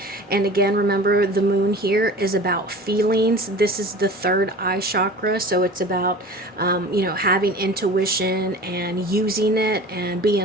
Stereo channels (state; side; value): normal; both; correlation 0.40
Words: And again, remember, the moon here is about feelings. This is the third eye chakra, so it's about having intuition and using it and